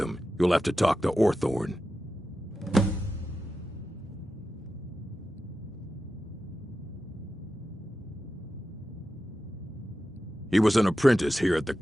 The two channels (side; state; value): both; normal; correlation 0.91